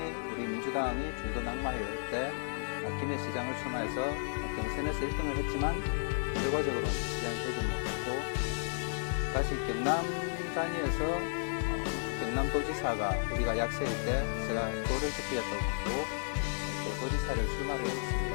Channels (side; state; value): right; silent; digital silence